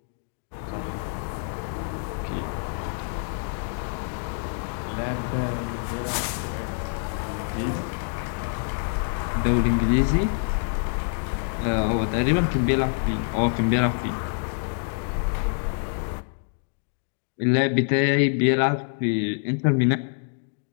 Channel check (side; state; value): right; silent; digital silence